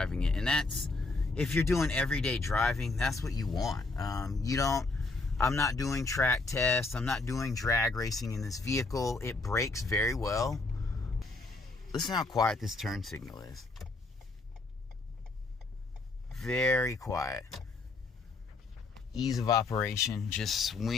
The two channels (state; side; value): quieter; right; 3.5 dB